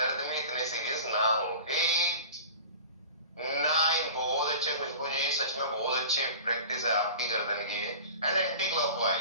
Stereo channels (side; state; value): both; inverted; correlation -0.38